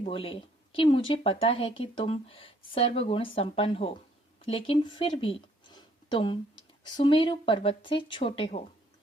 कि मुझे पता है कि तुम सर्वगुण संपन्न हो, लेकिन फिर भी तुम सुमेरु पर्वत से छोटे हो।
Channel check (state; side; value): normal; both; correlation 0.64